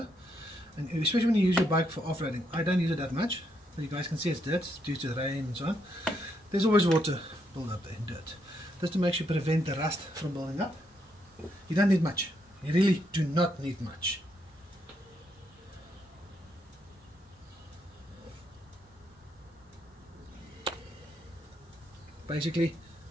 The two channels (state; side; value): normal; both; correlation 0.77